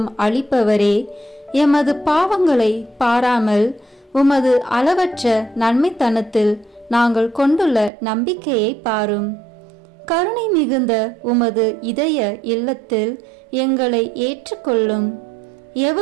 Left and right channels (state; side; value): drops out; left; at 7.9 s